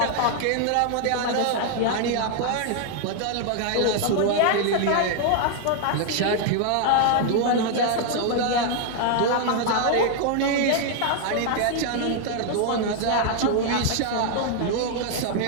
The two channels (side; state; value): both; different; correlation 0.00